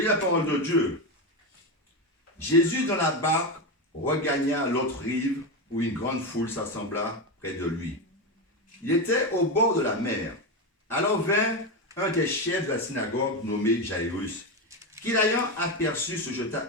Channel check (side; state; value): both; normal; correlation 0.14